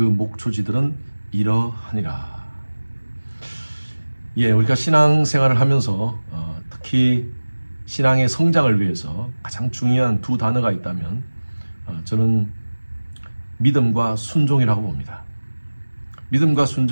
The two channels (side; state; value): both; inverted; correlation -1.00